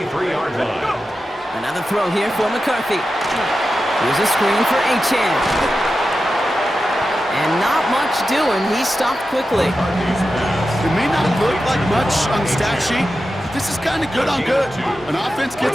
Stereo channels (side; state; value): both; normal; correlation 0.91